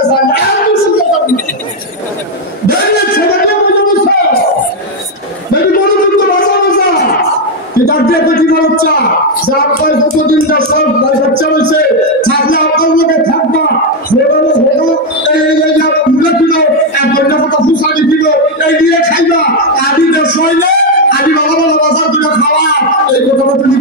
জানা আমি শুনতে পারি দেখলে ছেলেকে বুঝে বুঝছো দেখি বড় কিন্তু বাঁচা বাঁচা এটা দিয়ে কি বাচ্চা যা আপনার কতদিন যা সব বাচ্চা হয়েছে থাকলে আপনার লোকে থাকবা এই কিলো এক ঘন্টা কথা ফুসানি কিলো এই দিয়ে খাইবা আদি দেশ হইলে আদি ভালো ভালো বাজার করে খাওয়া এই কথা তুমি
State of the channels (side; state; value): both; normal; correlation 0.03